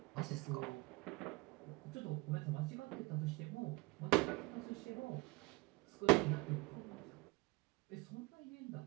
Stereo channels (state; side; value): quieter; left; 24.6 dB